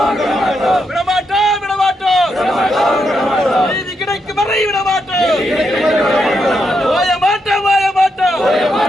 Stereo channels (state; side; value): normal; both; correlation 0.81